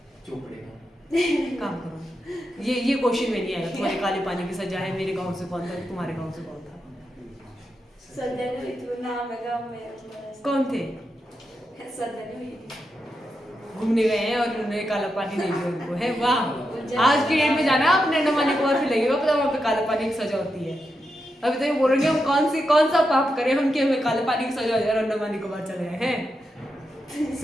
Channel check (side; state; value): both; normal; correlation 0.86